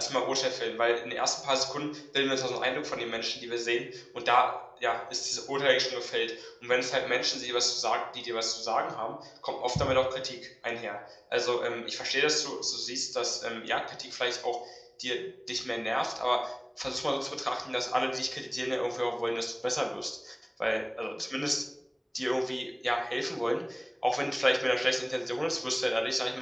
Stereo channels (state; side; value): identical; both; correlation 1.00